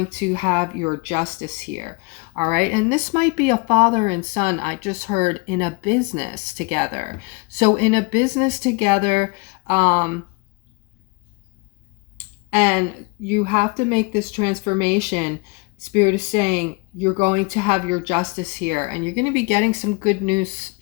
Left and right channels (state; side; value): quieter; right; 29.3 dB